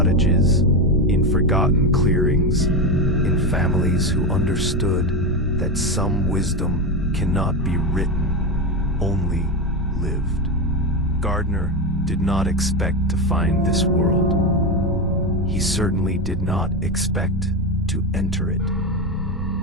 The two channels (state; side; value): normal; both; correlation 0.14